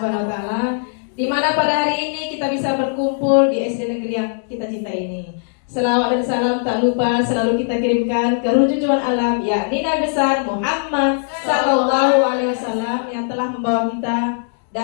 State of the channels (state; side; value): silent; right; digital silence